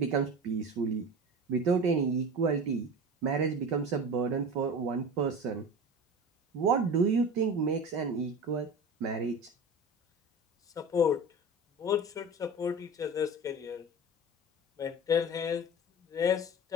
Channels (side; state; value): both; normal; correlation 0.32